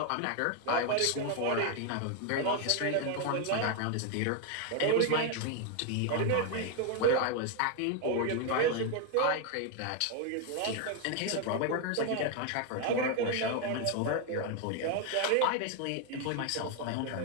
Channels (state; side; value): different; both; correlation 0.01